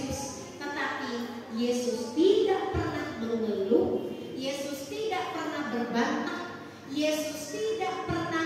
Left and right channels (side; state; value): both; identical; correlation 1.00